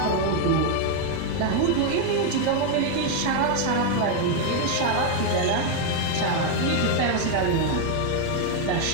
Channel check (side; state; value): both; different; correlation 0.01